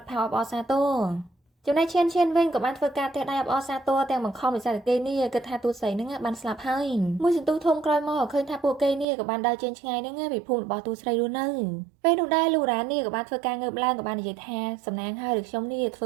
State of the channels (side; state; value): left; drops out; at 9.1 s